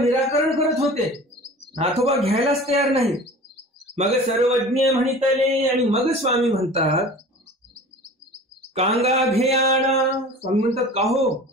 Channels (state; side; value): normal; both; correlation 0.40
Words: करत होते, नाथोबा घ्यायलाच तयार नाही. मग सर्वज्ञ म्हणितले. आणि मग स्वामी म्हणतात कांगा घेयाना. स्वामी म्हणतात का हो